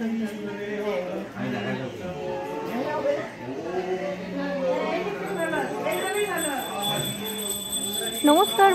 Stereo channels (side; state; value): both; identical; correlation 1.00